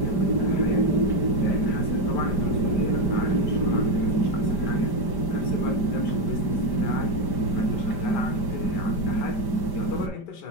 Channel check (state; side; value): late; right; 5.1 ms